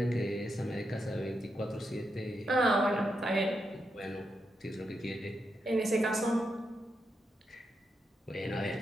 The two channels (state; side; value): normal; both; correlation 0.84